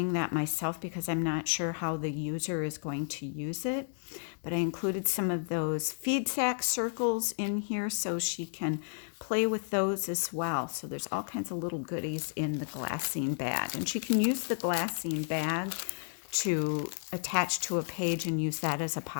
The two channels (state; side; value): silent; right; digital silence